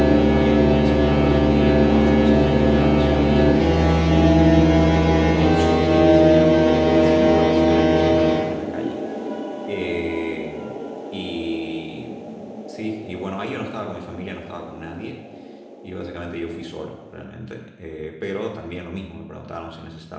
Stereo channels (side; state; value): both; identical; correlation 1.00